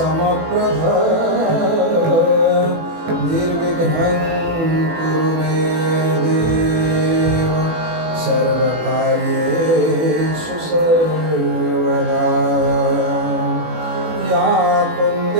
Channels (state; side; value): late; left; 18 ms